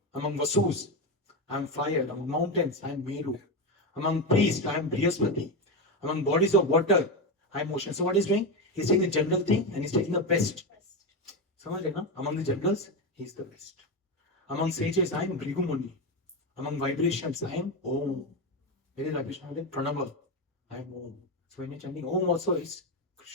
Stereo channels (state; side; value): normal; both; correlation 0.13